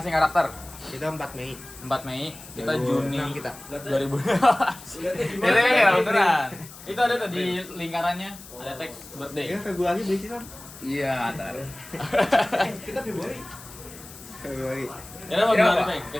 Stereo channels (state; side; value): noise; left; hiss, 17 dB below the sound